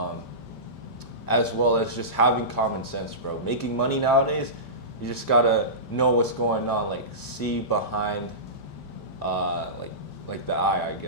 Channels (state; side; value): late; right; 5.1 ms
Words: as well as just having common sense, bro. Making money nowadays, you just gotta know what's going on, like see behind, like the eye, I